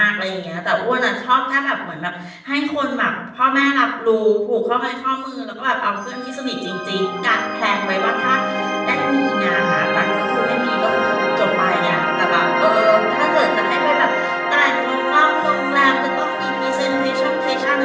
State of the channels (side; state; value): both; identical; correlation 1.00